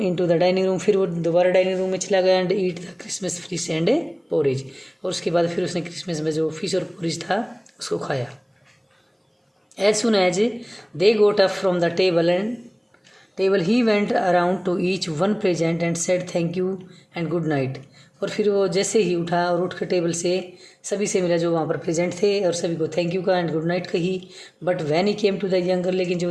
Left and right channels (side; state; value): both; identical; correlation 1.00